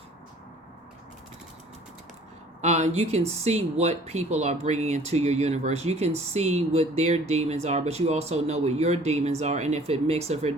You can see what people are bringing into your universe. You can see what their demons are, but you also know what your demons are. And if it mixes, if it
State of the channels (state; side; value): normal; both; correlation 0.52